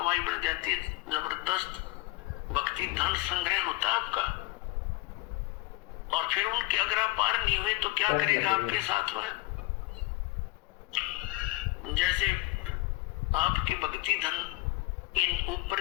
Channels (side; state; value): right; quieter; 20.3 dB